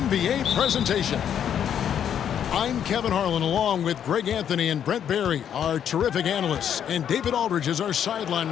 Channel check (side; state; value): right; quieter; 9.1 dB